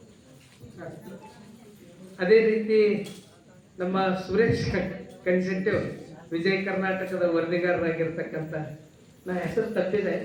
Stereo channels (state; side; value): identical; both; correlation 1.00